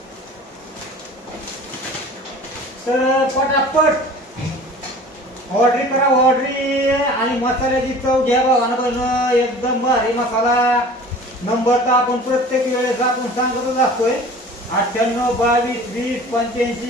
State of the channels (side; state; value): both; normal; correlation 0.43